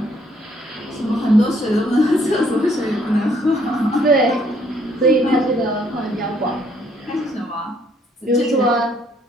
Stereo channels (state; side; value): normal; both; correlation 0.67